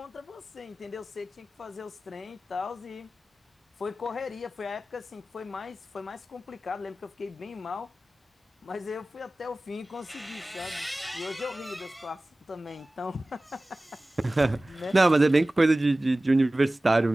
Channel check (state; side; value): normal; both; correlation 0.97